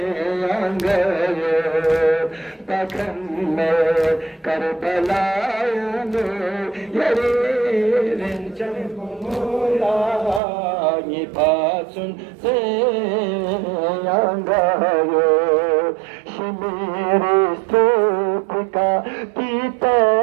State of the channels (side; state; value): left; drops out; at 10.4 s